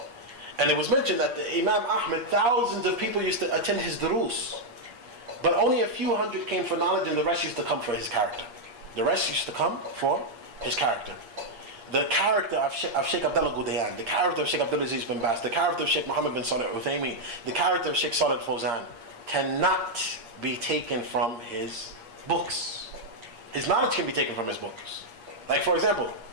And it was mentioned that the Imam Ahmed, thousands of people used to attend his durus, but only a few hundred came for knowledge, and the rest used to come for his character. The rest used to come for his character. The character of Shaykh Abdullaah al Ghudayan, the character of Shaykh Abdulaziz bin Baz, the character of Shaykh Muhammad bin Salih al-Uthaymin, the character of Shaykh Salih al-Fawzan cannot be taken from his books. His knowledge can be taken from his books. Like, for example,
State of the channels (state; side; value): late; left; 8.4 ms